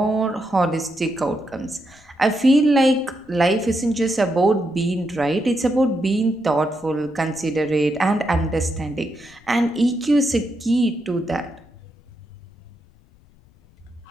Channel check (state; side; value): noise; left; rumble, 29 dB below the sound